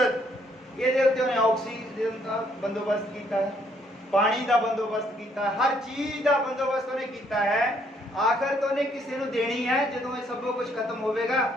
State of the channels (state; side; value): normal; both; correlation 0.68